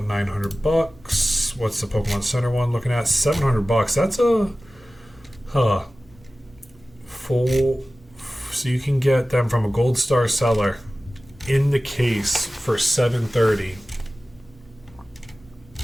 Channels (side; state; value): both; normal; correlation 0.96